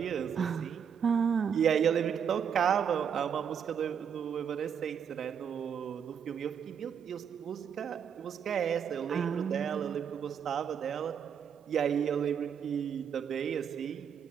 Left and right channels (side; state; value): left; quieter; 7.7 dB